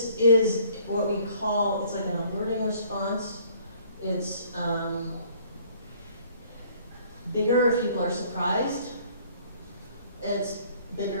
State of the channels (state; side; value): inverted; both; correlation -0.57